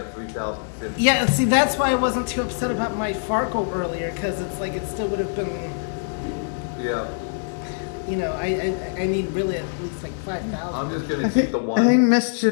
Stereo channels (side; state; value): right; silent; digital silence